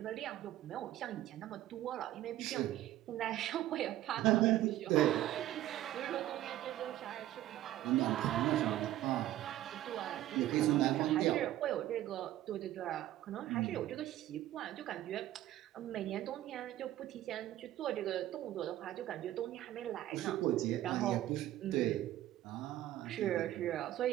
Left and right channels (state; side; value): quieter; left; 14.0 dB